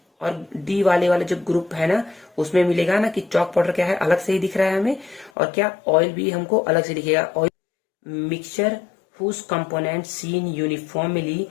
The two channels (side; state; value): right; drops out; at 5.3 s